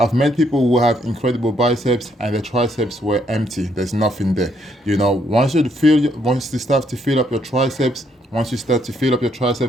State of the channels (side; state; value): both; normal; correlation 0.72